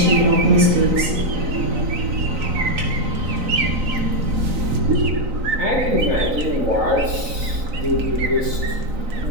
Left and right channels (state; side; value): late; left; 3.9 ms